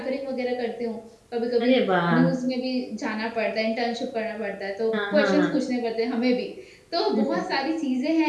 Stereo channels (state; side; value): identical; both; correlation 1.00